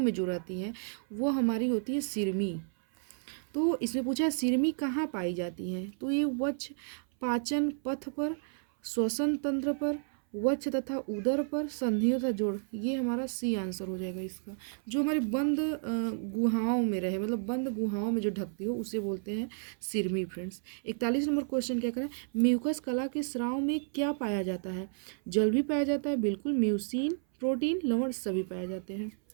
में जो रहती हैं, वो हमारी होती है सिरमी। तो इसमें पूछा है सिरमी कहाँ पाई जाती हैं? तो ये वक्ष पाचन पथ पर, श्वसन तंत्र पर, वक्ष तथा उदर पर, संधियों तथा जोड़, ये हमारा सी आंसर हो जाएगा इसका। जो हमारे बंद गुहाओं में रहे, मतलब बंद गुहाओं में जो ढकती हो, उसे बोलते हैं सिरमी फ्रेंड्स। 41 नंबर क्वेश्चन क्या करें? म्यूकस कला के स्राव में क्या पाया जाता है? जल भी पाया जाता है, बिल्कुल, म्यूसिन, प्रोटीन, लवण सभी पाए जाते हैं।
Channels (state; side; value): silent; left; 57 dB below the other